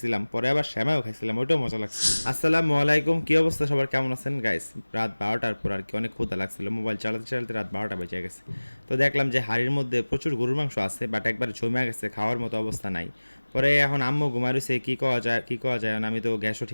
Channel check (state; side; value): inverted; both; correlation -1.00